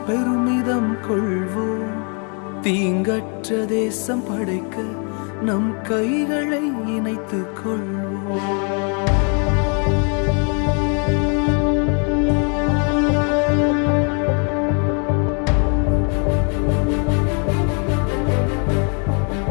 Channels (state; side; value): quieter; right; 37.9 dB